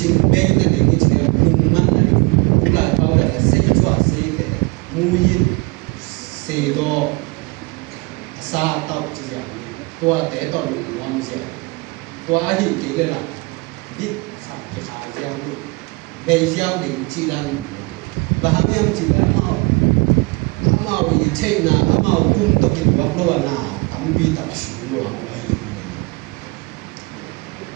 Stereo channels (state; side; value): quieter; left; 26.9 dB